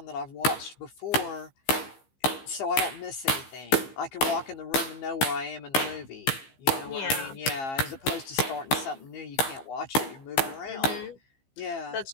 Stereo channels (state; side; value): late; right; 15 ms